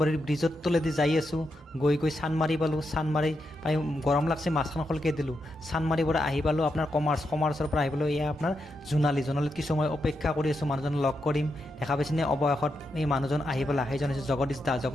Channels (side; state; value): both; normal; correlation 0.84